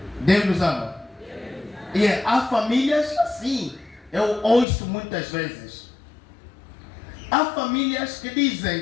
Deus nos ama. E há famílias assim. Eu ouço muitas vezes. Há famílias que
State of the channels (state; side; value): drops out; right; at 4.7 s